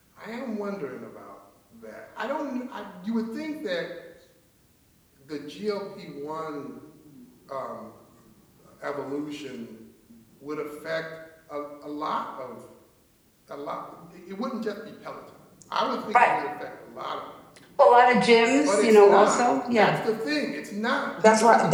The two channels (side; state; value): both; identical; correlation 1.00